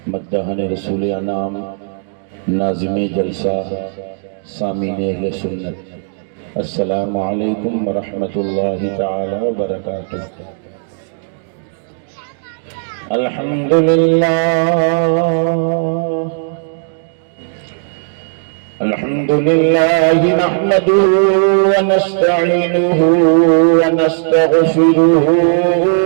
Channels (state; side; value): silent; left; digital silence